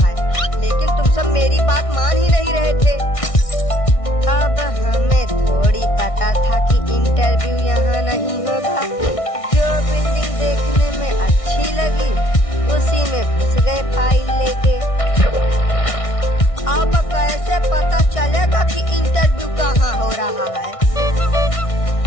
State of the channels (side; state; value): right; late; 1.6 ms